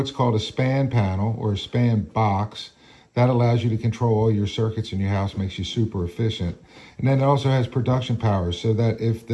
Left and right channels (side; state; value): both; identical; correlation 1.00